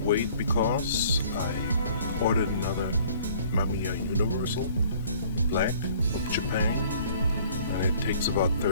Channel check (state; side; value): inverted; both; correlation -0.55